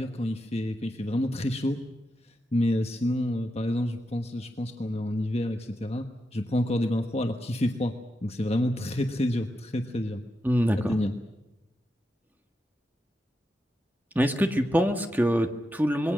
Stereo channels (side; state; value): both; normal; correlation 0.87